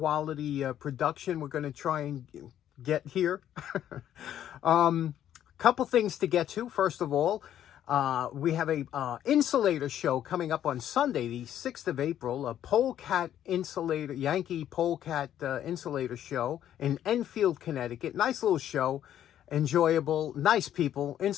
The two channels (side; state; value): right; quieter; 11.0 dB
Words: production we're going to try and get here. Couple things to get to. First of all, we have a insulator show coming up on Sunday, the 6th of April, a polecat insulator, Yankee polecat insulator show in Enfield, Connecticut. Nice little show, enjoyable, nice people.